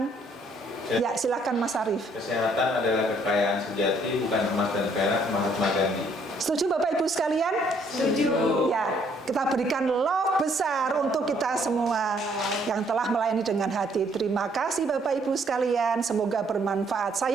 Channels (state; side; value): normal; both; correlation 0.66